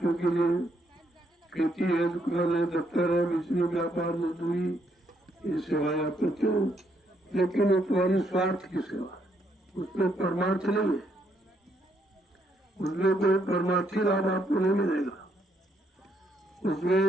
के लिए, खेती है, दुकान है, दफ्तर है, बिजली, व्यापार, मजदूरी, ये सेवाएं आप करते हो। लेकिन वो तुम्हारी स्वार्थ की सेवा, उसमें परमार्थ नहीं है, उसमें कोई परमार्थी लाभ आपको नहीं मिलेगा,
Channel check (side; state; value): both; normal; correlation 0.73